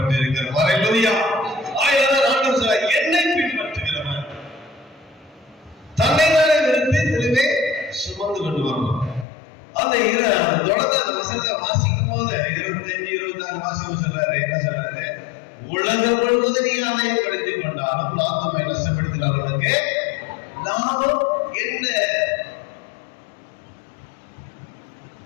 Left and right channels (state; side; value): drops out; right; at 9.2 s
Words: அல்லேலூயா. ஆயிரம் ஆண்டவர் சொல்றார், என்னை பின்பற்றுகிறவன் தன்னை தானே நிறுத்தி தெளிவே சுமந்து கொண்டு வரணும். அந்த தொடர்ந்து அந்த வசனத்தை வாசிக்கும் போது 25, 26 வாசிக்கும் சொல்றாரு. என்ன சொல்றாரு? உலகம் முழுவதும் நீ ஆதாயப்படுத்திக் கொண்டாலும் லாபம் நஷ்டப்படுத்தினாலும் உனக்கு லாபம் என்ன?